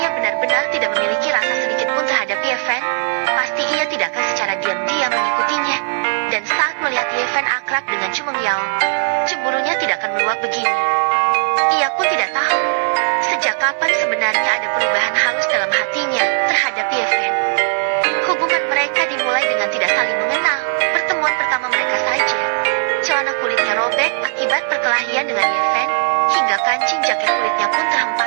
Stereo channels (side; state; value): left; silent; digital silence